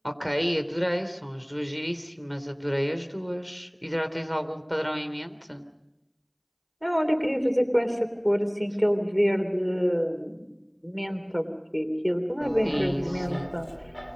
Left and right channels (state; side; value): identical; both; correlation 1.00